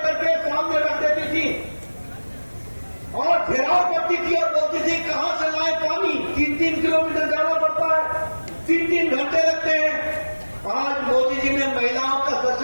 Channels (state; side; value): inverted; both; correlation -1.00